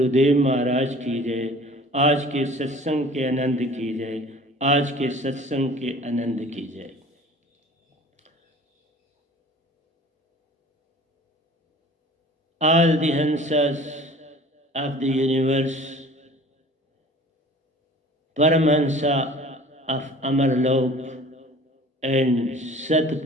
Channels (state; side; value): normal; both; correlation 0.46